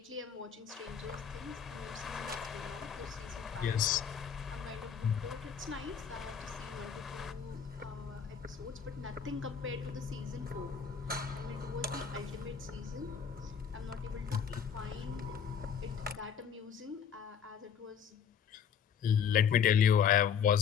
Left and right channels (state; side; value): quieter; right; 7.5 dB